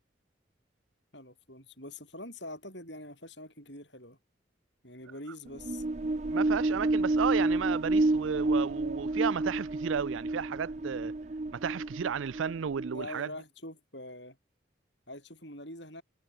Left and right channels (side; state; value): left; quieter; 3.1 dB